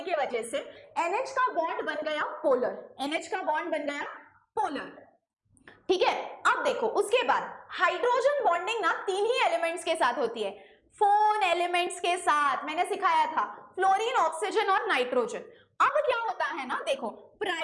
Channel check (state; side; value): identical; both; correlation 1.00